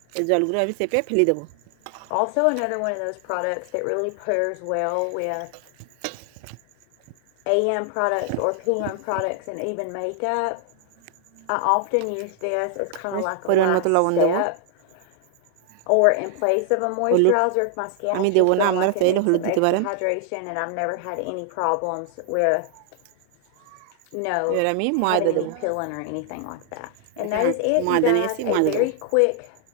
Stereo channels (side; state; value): both; different; correlation 0.00